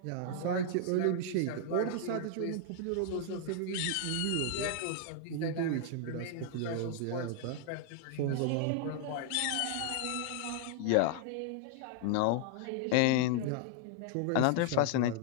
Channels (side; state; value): both; different; correlation 0.00